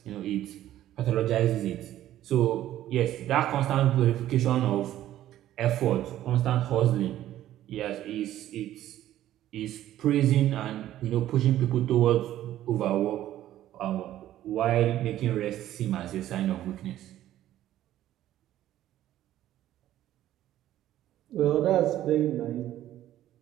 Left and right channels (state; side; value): quieter; left; 13.0 dB